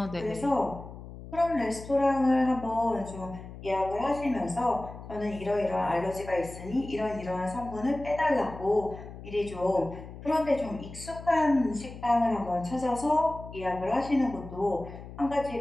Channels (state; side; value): noise; left; hum, 14 dB below the sound